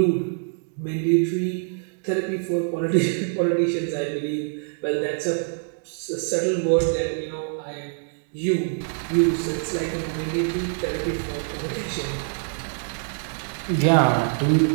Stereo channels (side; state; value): left; silent; digital silence